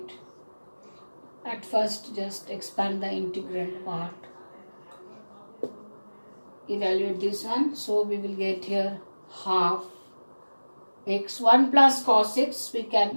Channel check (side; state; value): both; inverted; correlation -1.00